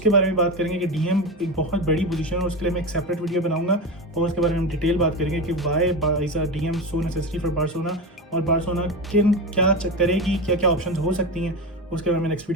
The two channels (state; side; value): normal; both; correlation 0.20